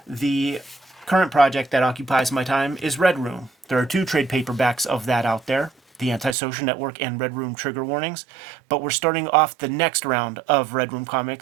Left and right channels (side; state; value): left; drops out; at 6.4 s